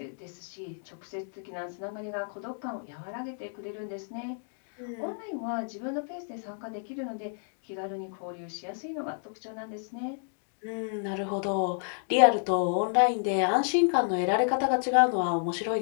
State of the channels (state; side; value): silent; right; digital silence